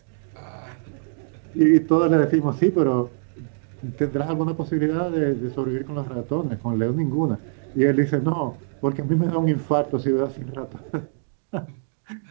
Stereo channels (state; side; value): silent; left; digital silence